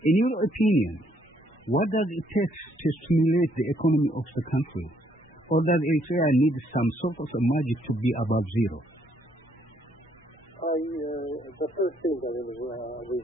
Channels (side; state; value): both; normal; correlation 0.69